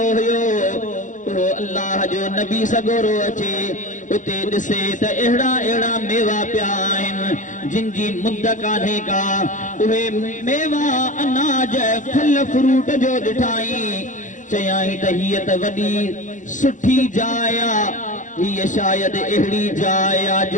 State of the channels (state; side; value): late; right; 0.37 ms